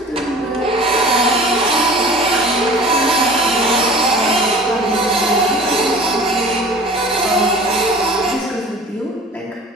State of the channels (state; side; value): normal; both; correlation 0.43